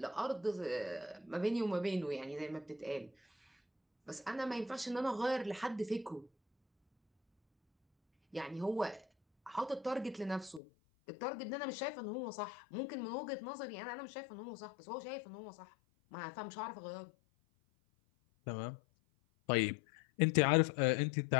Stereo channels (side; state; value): right; drops out; at 10.6 s